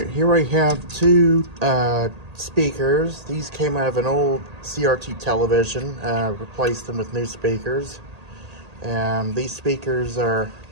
here I have two speakers. These came out of an old CRT television, replaced them with new speakers. These speakers are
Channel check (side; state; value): left; late; 1.8 ms